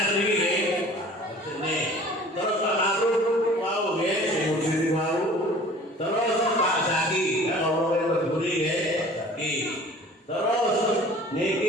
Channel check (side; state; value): both; normal; correlation 0.47